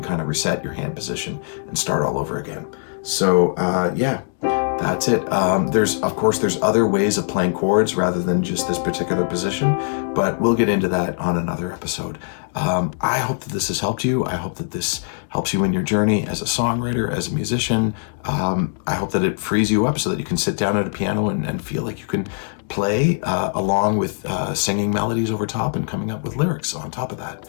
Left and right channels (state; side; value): silent; right; 65 dB below the other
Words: of reset your hand position and start all over again. So yeah, that's it. Of course, there's other ways of playing chords rather than just this particular position, but we'll get into that on another episode. I hope that this has helped you. I hope that this helps you in your journey as a songwriter, as a musician. I hope that it frees you up so that you can sit down at a piano and feel like you can play along with singing melodies over top and coming up with lyrics on top of that.